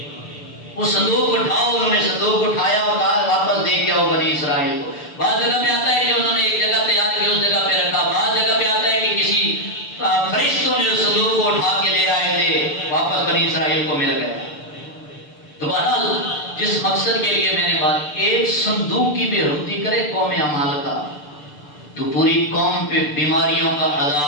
وہ صندوق اٹھاؤ، انہوں نے صندوق اٹھایا اور کہا واپس دے کے آؤ بنی اسرائیل کو۔ بعض جگہ پہ آتا ہے کہ انہوں نے ایک جگہ تیار کی، اس جگہ پہ رکھا، بعض جگہ پہ آتا ہے کہ کسی فرشتوں نے اس صندوق کو اٹھا کے لے آئے تھے، واپس بنی اسرائیل کو مل گیا۔ تو بہرحال جس مقصد کے لیے میں نے بات، ایک صندوق کی بے حرمتی کرے قوم عمالقہ تو پوری قوم پہ بیماریوں کا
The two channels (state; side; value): late; right; 6.8 ms